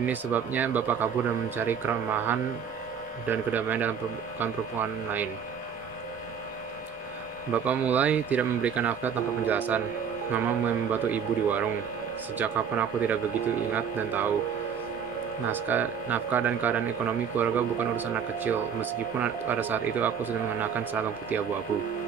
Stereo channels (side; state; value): left; quieter; 7.2 dB